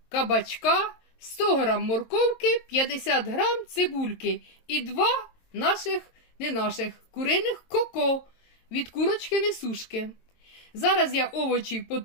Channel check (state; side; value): late; right; 23 ms